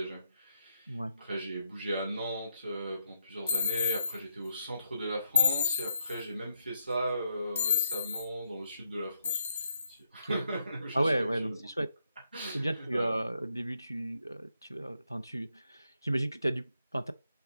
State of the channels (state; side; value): inverted; both; correlation -0.78